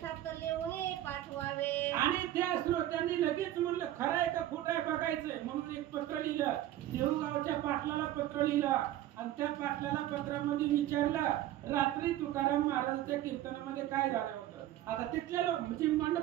लिहून पाठवावे. आणि त्या श्रोत्यांनी लगेच म्हणलं खरं आहे का खोटं आहे बघायचंय म्हणून एक पत्र लिहिलं. देऊळगावच्या पाटलाला पत्र लिहिलं आणि त्या पाटलाला पत्रामध्ये विचारलं रात्री तुकाराम महाराजांच्या कीर्तनामध्ये काय झालं होतं. आता तिथले लोक म्हणजे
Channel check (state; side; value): quieter; left; 13.5 dB